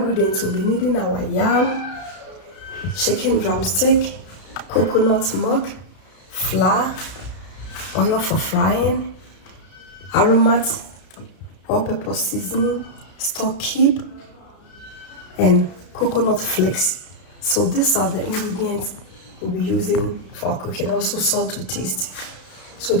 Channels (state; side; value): late; right; 33 ms